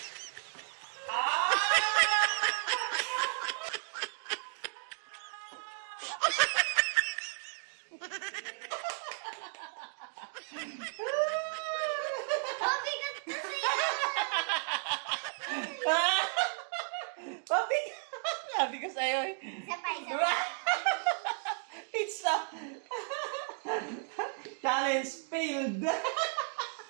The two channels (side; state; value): left; silent; 55 dB below the other